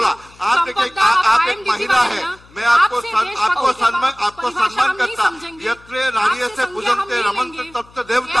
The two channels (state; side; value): noise; left; hum, 26 dB below the sound